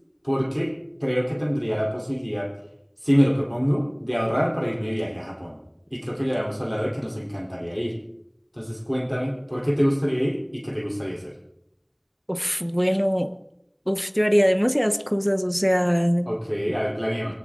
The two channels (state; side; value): identical; both; correlation 1.00